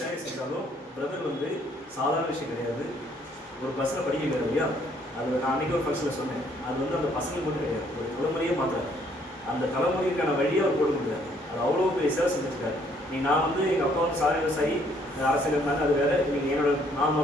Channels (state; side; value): normal; both; correlation 0.65